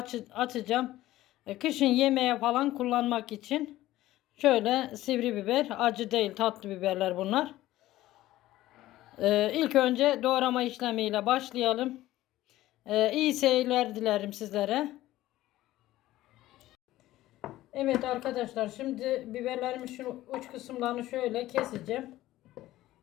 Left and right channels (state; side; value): quieter; right; 15.6 dB